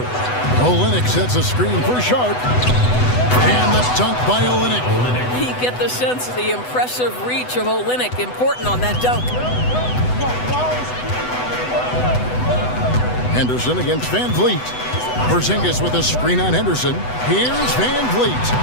Olynyk sets a screen for Sharp. And the dunk by Olynyk. You get the sense of the impressive reach of Olynyk. Important on that dunk. Henderson against Van Vliet. Porzingis with a screen on Henderson. Here's Van Vliet.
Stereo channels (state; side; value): late; right; 8.0 ms